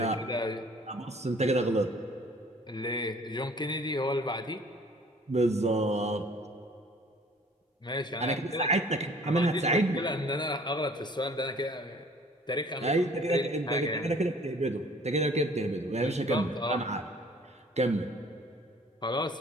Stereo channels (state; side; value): normal; both; correlation 0.53